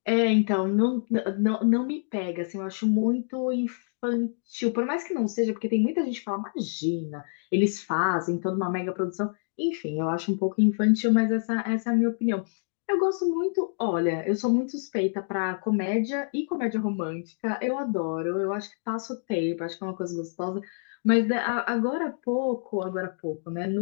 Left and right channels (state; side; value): silent; right; digital silence